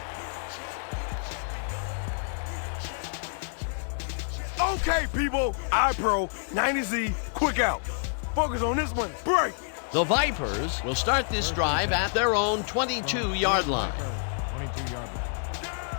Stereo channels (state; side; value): silent; right; 59 dB below the other